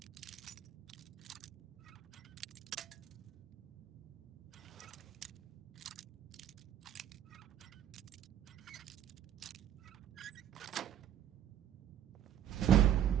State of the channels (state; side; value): quieter; left; 10.4 dB